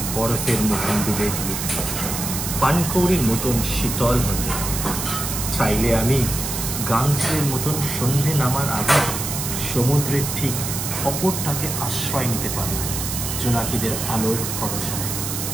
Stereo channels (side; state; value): right; noise; hiss, 4 dB below the sound